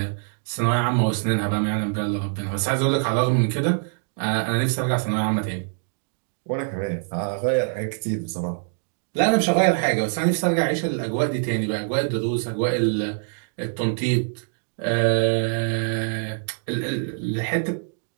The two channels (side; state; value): left; silent; digital silence